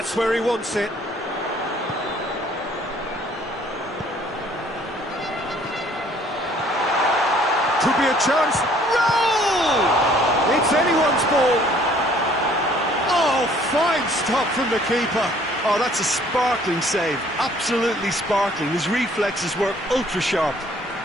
where he wants it. Could be a chance. Roll! It's anyone's ball. Oh, fine stop from the keeper. Oh, that's a sparkling save. Absolutely sparkling. His reflexes were ultra sharp.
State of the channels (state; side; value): normal; both; correlation 0.58